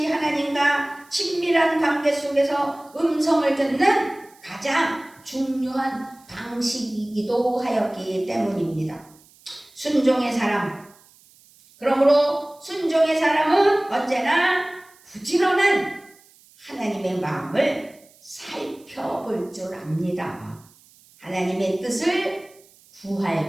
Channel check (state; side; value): noise; right; hiss, 28 dB below the sound